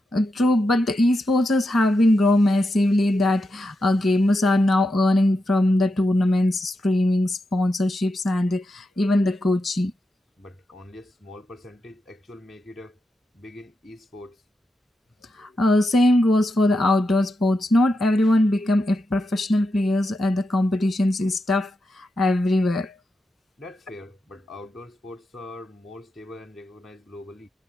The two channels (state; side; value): normal; both; correlation 0.87